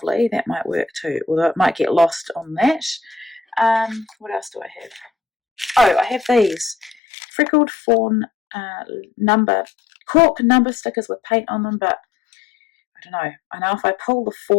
That might work too, although it might get lost on that. What else do I have? Oh, I have these freckled fawn cork number stickers with paint on them, but I don't know. I know if I pull the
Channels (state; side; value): drops out; right; at 7.0 s